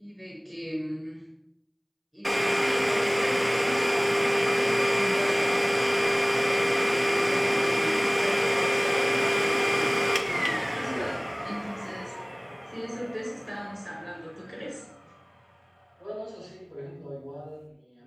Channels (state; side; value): identical; both; correlation 1.00